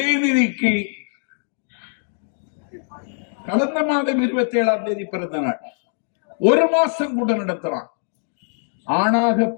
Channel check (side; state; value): right; silent; digital silence